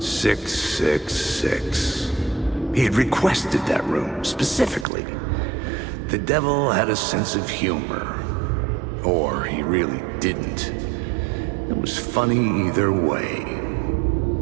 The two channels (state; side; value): drops out; left; at 4.9 s